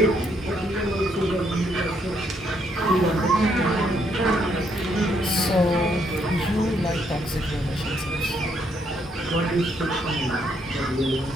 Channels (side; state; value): both; normal; correlation 0.73